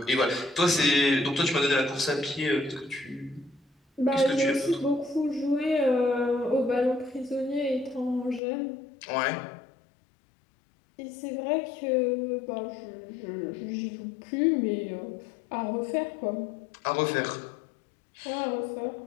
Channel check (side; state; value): right; drops out; at 8.4 s